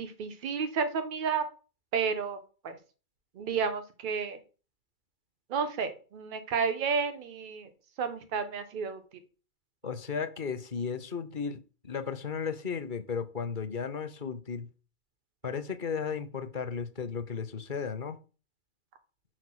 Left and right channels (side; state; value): left; late; 2.3 ms